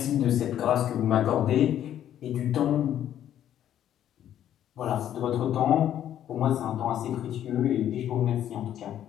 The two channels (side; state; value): right; quieter; 10.9 dB